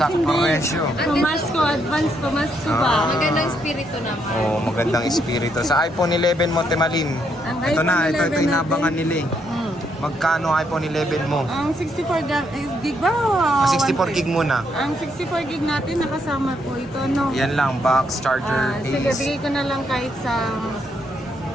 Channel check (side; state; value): both; normal; correlation 0.75